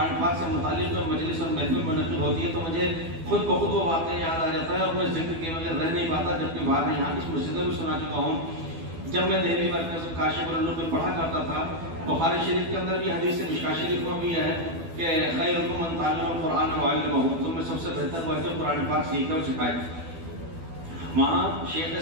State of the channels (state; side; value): late; left; 12 ms